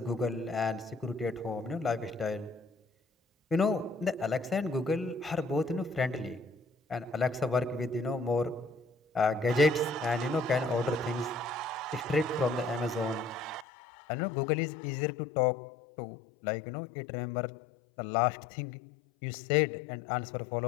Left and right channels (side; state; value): right; drops out; at 13.7 s